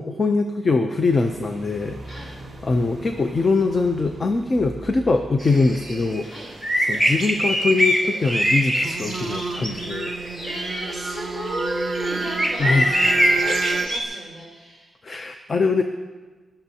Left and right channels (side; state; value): both; normal; correlation 0.87